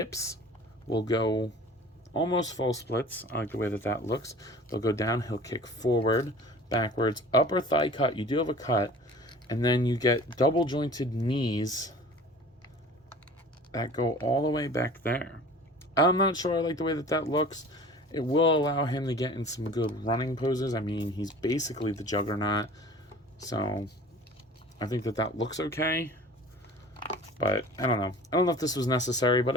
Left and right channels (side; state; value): both; normal; correlation 0.44